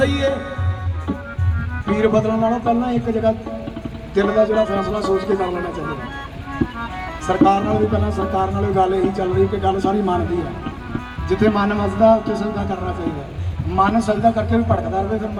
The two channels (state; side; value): identical; both; correlation 1.00